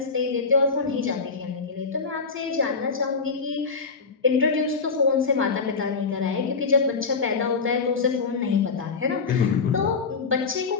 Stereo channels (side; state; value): right; quieter; 4.8 dB